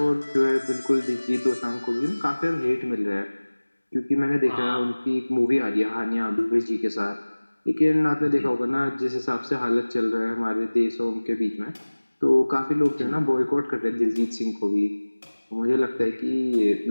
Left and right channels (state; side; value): inverted; both; correlation -1.00